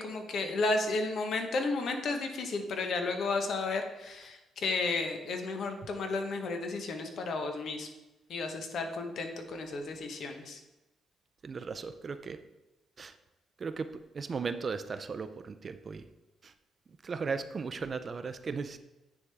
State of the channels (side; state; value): both; normal; correlation 0.74